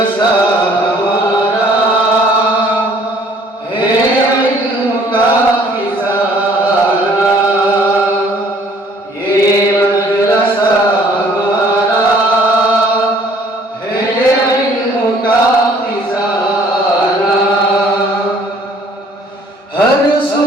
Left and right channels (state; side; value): normal; both; correlation 0.58